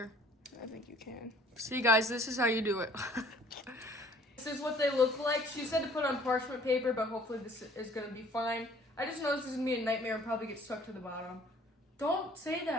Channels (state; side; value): normal; both; correlation 0.55